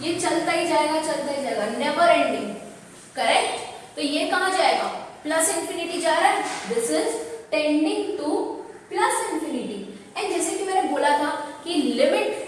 ये चलता ही जाएगा, नेवर एंडिंग. करेक्ट. तो ये कहां जाएगा, प्लस इंफिनिटी जा रहा है. This is tending two plus infinity. And जैसे कि मैंने बोला था कि लिमिट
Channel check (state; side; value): identical; both; correlation 1.00